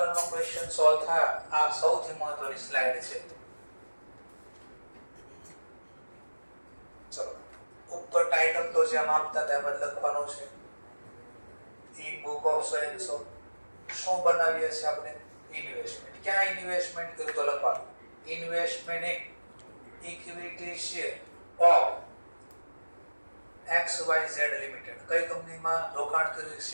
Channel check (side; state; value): both; inverted; correlation -1.00